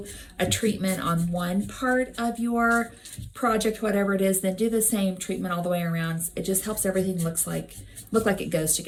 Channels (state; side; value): identical; both; correlation 1.00